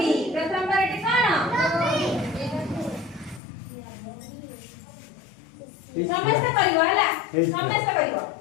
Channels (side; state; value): right; drops out; at 3.4 s